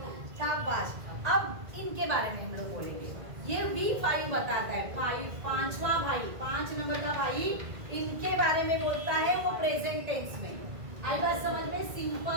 शाबाश। अब इनके बारे में हम लोग बोलेंगे। ये V5 बताता है, पांचवा भाई, 5 नंबर का भाई, इनके बारे में बोलता है वो प्रेजेंट टेंस में। आई बात समझ में?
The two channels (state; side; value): late; left; 1.9 ms